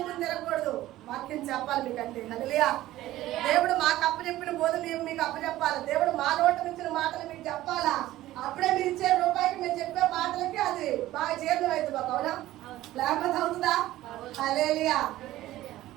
తినకూడదు. వాక్యం చెప్పాలి మీకంటే. హల్లెలూయా. దేవుడు మాకు అప్పచెప్పిన బోధ మేము మీకు అప్పచెప్పాలి. దేవుడు మా నోట నుంచి మాటలు మీకు చెప్పాలా? అప్పుడే మీరు ఇచ్చే రూపాయికి మేము చెప్పే మాటలకి అది బాగా జీర్ణం అవుతుంది మాకు. అవునా? లేకపోతే అవుతుందా? హల్లెలూయా.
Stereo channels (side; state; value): left; quieter; 15.4 dB